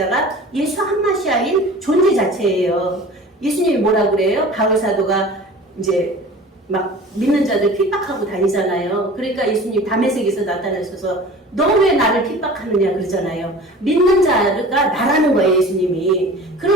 예수 한마시아인 존재 자체예요. 예수님이 뭐라 그래요? 바울 사도가 이제 막 믿는 자들 핍박하고 다니잖아요. 그러니까 예수님 다메섹에서 나타나셔서 너 왜 나를 핍박하느냐 그러잖아요. 믿는 자가 나라는 거예요, 예수님이.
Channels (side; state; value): both; normal; correlation 0.41